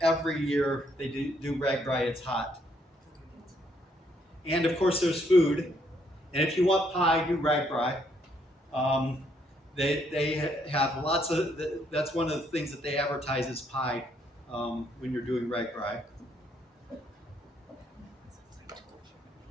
every year they do RAGBRAI, it's hot. And of course there's food. And if you want pie, do RAGBRAI. They have lots of, that's one of the things that they advertise as pie when you're doing RAGBRAI.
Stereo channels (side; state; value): both; normal; correlation 0.71